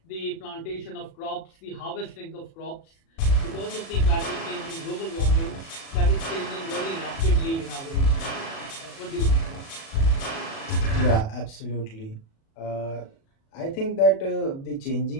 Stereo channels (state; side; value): late; right; 36 ms